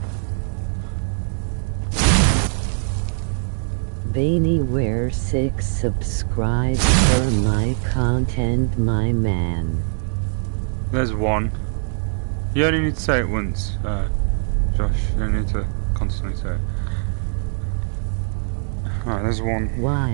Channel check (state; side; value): silent; left; digital silence